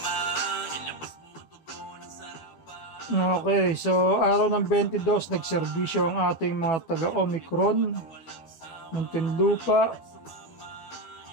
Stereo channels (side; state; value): right; late; 12 ms